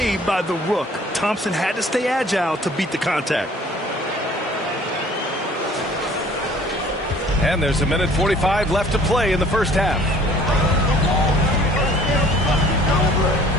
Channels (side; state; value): both; normal; correlation 0.53